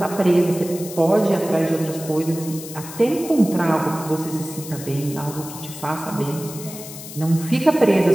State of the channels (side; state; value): left; noise; hiss, 13 dB below the sound